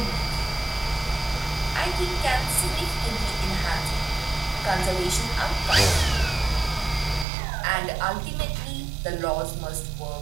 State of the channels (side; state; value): left; drops out; at 7.2 s